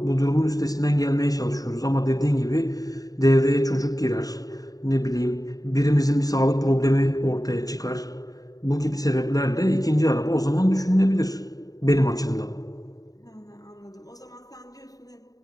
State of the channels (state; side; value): late; right; 0.18 ms